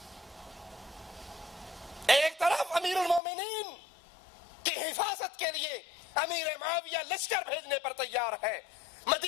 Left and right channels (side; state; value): right; drops out; at 3.2 s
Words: ایک طرف امیر المومنین کی حفاظت کے لیے امیر معاویہ لشکر بھیجنے پر تیار ہے،